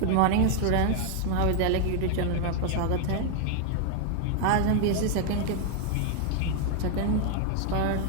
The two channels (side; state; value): both; different; correlation 0.00